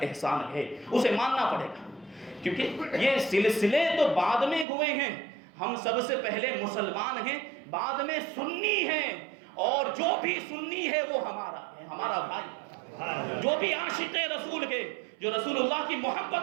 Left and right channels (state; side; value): drops out; left; at 4.7 s